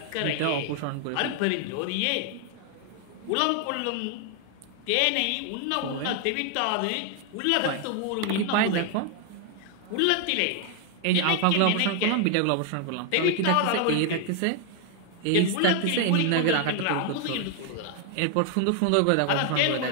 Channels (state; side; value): different; both; correlation 0.00